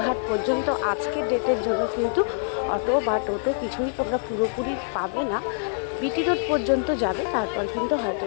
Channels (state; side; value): silent; right; 62 dB below the other